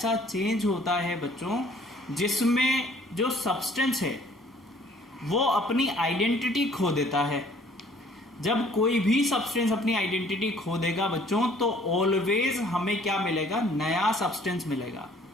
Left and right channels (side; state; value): both; normal; correlation 0.57